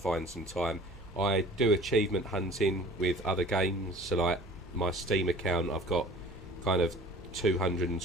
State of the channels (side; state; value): both; normal; correlation 0.47